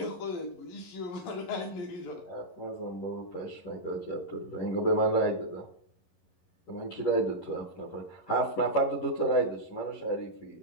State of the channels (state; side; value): late; right; 11 ms